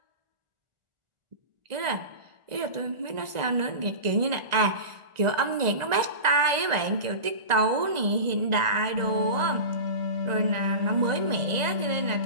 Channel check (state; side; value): late; left; 1.9 ms